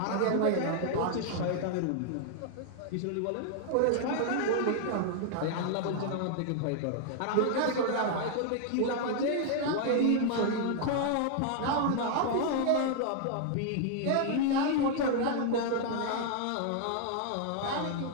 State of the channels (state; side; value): different; both; correlation 0.00